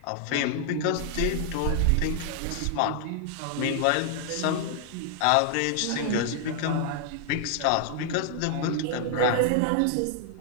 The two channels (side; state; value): both; different; correlation 0.00